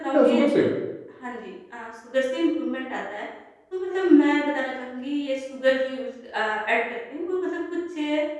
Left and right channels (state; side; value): identical; both; correlation 1.00